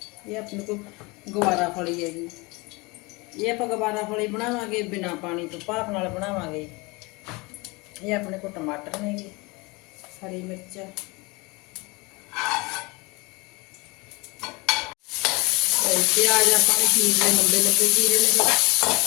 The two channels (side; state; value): right; quieter; 25.6 dB